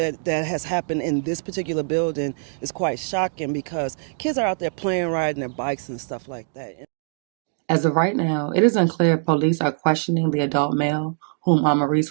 that has happened in this particular building is quite shocking because kids are out there playing, riding their bikes and stuff like that. As of right now, it is unclear if police are questioning the adult male whom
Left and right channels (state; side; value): silent; left; digital silence